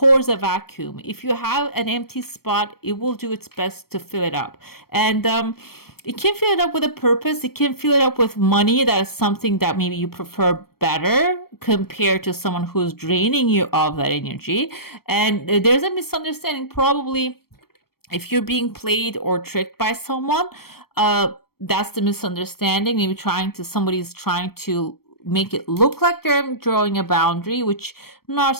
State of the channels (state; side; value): late; right; 0.94 ms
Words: a vacuum. If you have an empty spot, it will do its best to fill it up. And it can fill it up with a purpose. It can fill it up with money. That is something that maybe you prefer better compared to someone who's draining you of that energy. And there's a misunderstanding probably if you're being played or tricked by someone. That's the misunderstanding. Maybe somebody's trying to make it look like they're drawing a boundary, which